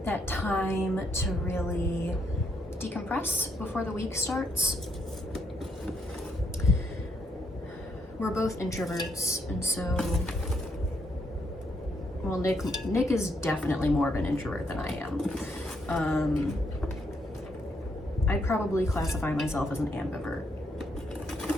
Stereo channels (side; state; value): both; normal; correlation 0.75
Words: that time to really decompress before the week starts. We're both introverts, and so, well, Nick is definitely more of an introvert than I am. I'd probably classify myself as an ambivert.